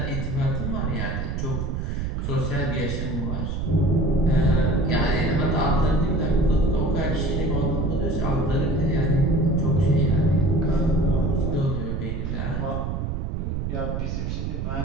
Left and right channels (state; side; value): noise; right; rumble, 2 dB below the sound